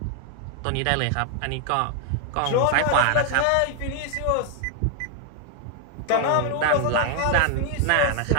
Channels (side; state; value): both; different; correlation 0.00